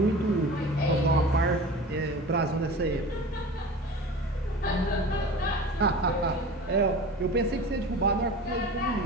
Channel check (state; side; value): normal; both; correlation 0.36